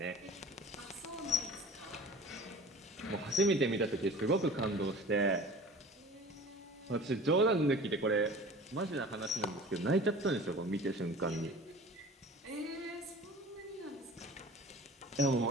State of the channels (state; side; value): normal; both; correlation 0.41